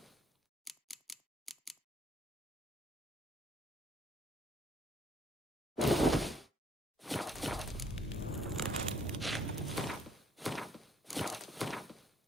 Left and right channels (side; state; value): both; normal; correlation 0.64